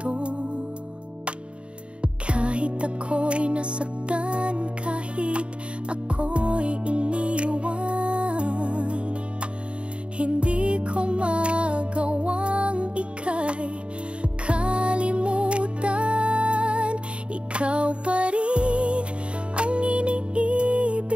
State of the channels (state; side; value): late; left; 0.057 ms